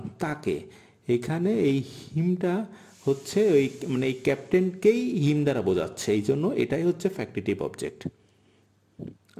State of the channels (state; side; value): identical; both; correlation 1.00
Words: তাকে এখানে এই হিমটা হচ্ছে ওই মানে এই ক্যাপ্টেনকেই হিম দ্বারা বোঝাচ্ছে এই জন্য এটাই হচ্ছে ফ্যাক্টিটিভ অবজেক্ট